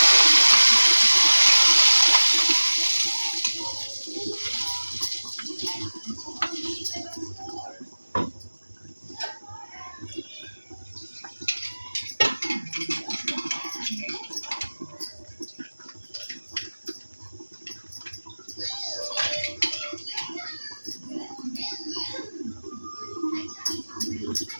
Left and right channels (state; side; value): inverted; both; correlation -1.00